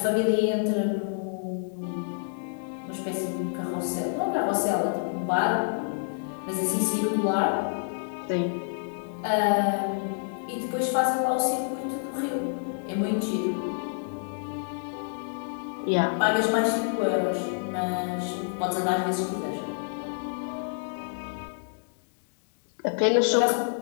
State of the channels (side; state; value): right; silent; digital silence